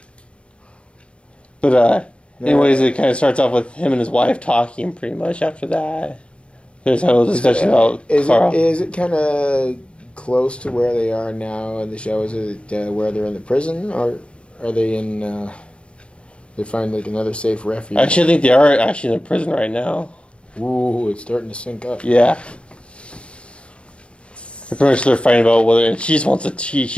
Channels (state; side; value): late; right; 0.059 ms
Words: But anyways, it kind of starts off with him and his wife talking pretty much after that. There's a little discussion about Carl. Is it kind of close to where they are now in the show? Is it where they're in the prison, or are they in... they find like another safe refuge? Actually, I think they are actually in the prison right now. Ooh, it's starting to sync up. Yeah. Pretty much they're fighting about whether, and she just wants to.